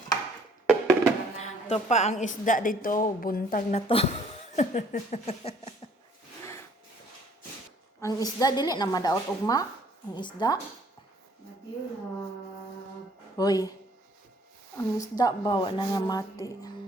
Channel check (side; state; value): both; normal; correlation 0.60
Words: Ito pa ang isda dito, buntag na to. Ang isda dili na madaot ugma. Ang isda. Hoy. Ang isda bawa na nga mati.